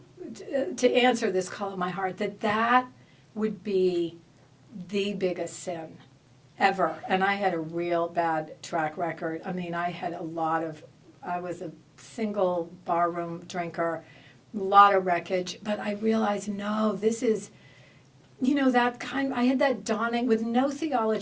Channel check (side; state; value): both; identical; correlation 1.00